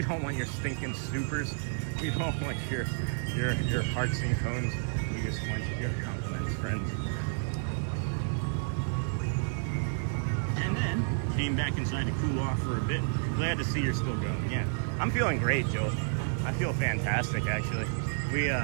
don't want your stinking supers. We don't want your hearts and cones. We just want your compliments, friends. And then came back inside to cool off for a bit. Glad to see you're still going. Yeah, I'm feeling great, Joel. I feel fantastic, actually. We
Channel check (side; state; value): left; silent; 57 dB below the other